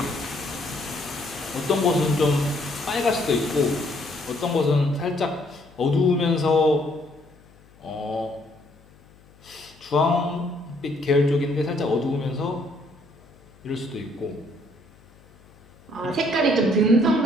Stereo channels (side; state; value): left; noise; hum, 27 dB below the sound